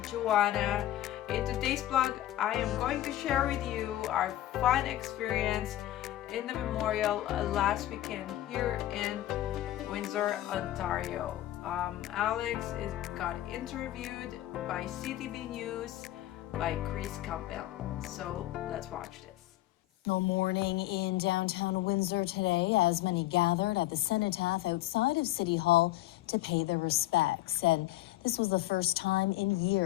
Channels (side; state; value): right; quieter; 14.7 dB